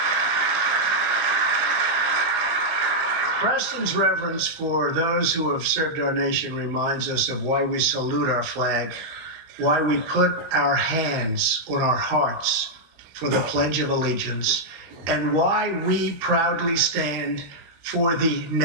Preston's reverence for those who have served our nation reminds us of why we salute our flag, why we put our hands on our hearts for the Pledge of Allegiance, and why we proudly stand for the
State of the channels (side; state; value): left; late; 18 ms